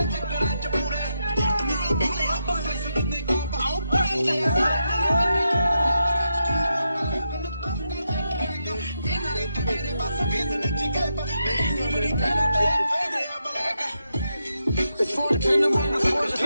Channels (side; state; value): both; inverted; correlation -0.84